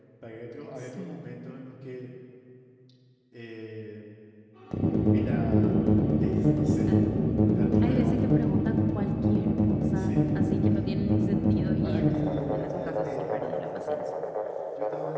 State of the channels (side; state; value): both; identical; correlation 1.00